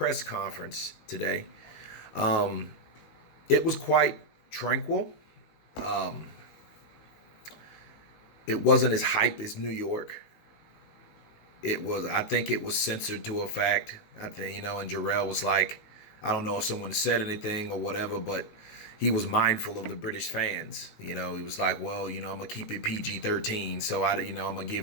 conference today. Um, it was quite tranquil. Um, it wasn't as hype as New York. I think it was censored to a fact. I think, and Jarrell was like, I don't know if someone said anything or whatever, but he was mindful of the British fans. He was like, well, I'm gonna keep it PG-13, so I'm gonna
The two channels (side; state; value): right; late; 19 ms